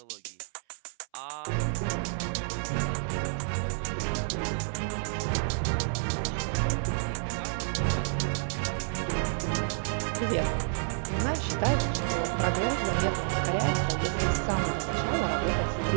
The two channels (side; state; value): left; silent; 58 dB below the other